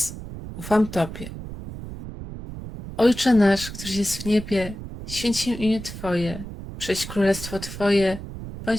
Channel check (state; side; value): noise; right; rumble, 11 dB below the sound